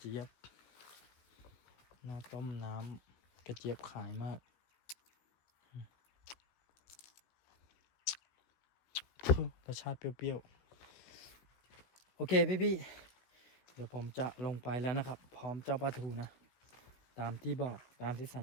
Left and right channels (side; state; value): right; late; 16 ms